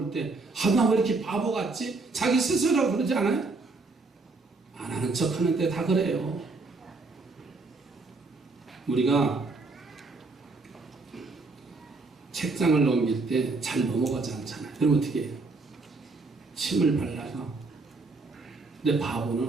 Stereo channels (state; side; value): quieter; left; 3.7 dB